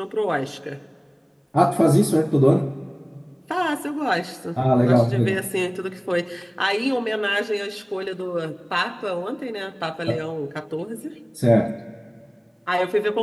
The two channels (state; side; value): identical; both; correlation 1.00